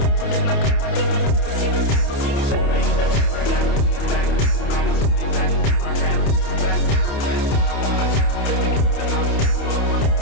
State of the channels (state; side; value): late; right; 28 ms